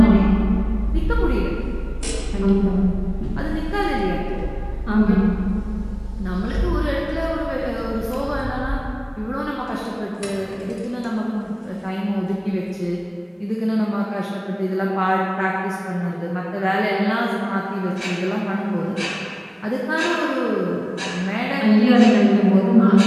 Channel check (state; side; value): identical; both; correlation 1.00